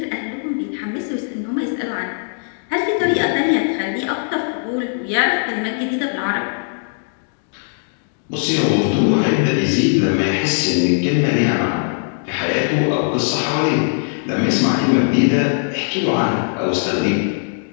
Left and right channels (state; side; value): silent; right; 61 dB below the other